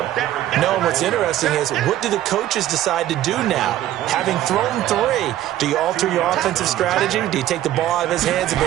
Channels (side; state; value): left; quieter; 13.3 dB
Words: No, and what's interesting is, what do the coaches decide to do now? Having thrown 3, do you alter your offensive strategy? Do you take the ball out of his hands and